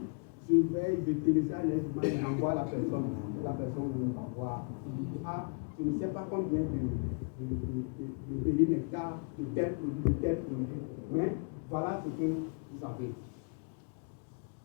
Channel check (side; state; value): right; quieter; 39.5 dB